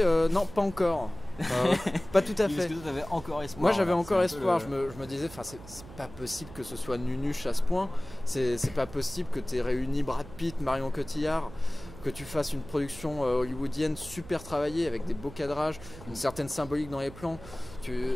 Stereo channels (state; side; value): noise; right; hum, 16 dB below the sound